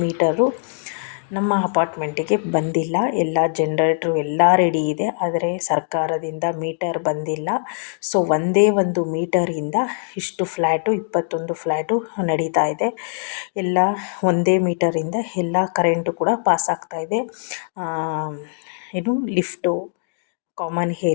ಮೀಟರು ನಮ್ಮ ಅಪಾರ್ಟ್ಮೆಂಟಿಗೆ ಬಂದಿಲ್ಲ. ಎಲ್ಲ ಜನರೇಟ್ರು ಎಲ್ಲ ರೆಡಿ ಇದೆ, ಆದರೆ ಸರ್ಕಾರದಿಂದ ಮೀಟರ್ ಬಂದಿಲ್ಲ. ಸೊ ಒಂದೇ ಒಂದು ಮೀಟರಿಂದ ಇಷ್ಟು ಫ್ಲ್ಯಾಟು 21 ಫ್ಲ್ಯಾಟು ನಡೀತಾ ಇದೆ. ಎಲ್ಲ ಒಂದೇ ಮೀಟರಿಂದ ಎಲ್ಲ ಕರೆಂಟು ಕೂಡ ಪಾಸ್ ಆಗ್ತಾ ಇದೆ. ಲಿಫ್ಟು, ಕಾಮನ್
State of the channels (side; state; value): right; silent; digital silence